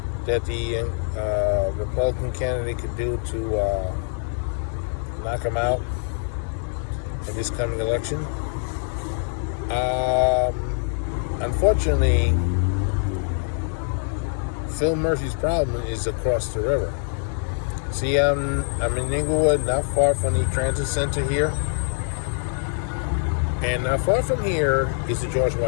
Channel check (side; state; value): right; silent; digital silence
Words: the Republican candidate could do to knock him out in this coming election. Unfortunately, Phil Murphy's problem is across the river. See, I'm in Inglewood, not far from the transit center here. And not far from here is the George